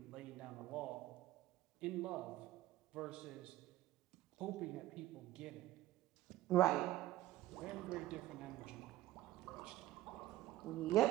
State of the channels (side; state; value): left; quieter; 15.1 dB